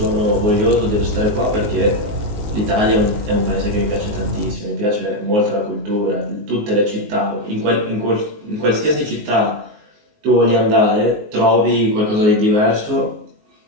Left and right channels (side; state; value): left; late; 19 ms